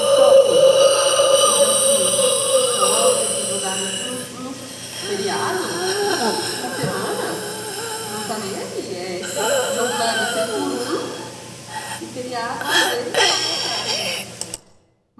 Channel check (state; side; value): identical; both; correlation 1.00